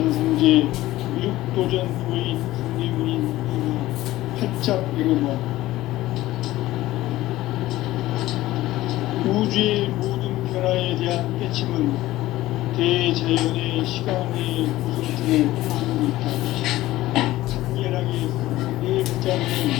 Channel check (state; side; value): quieter; right; 16.4 dB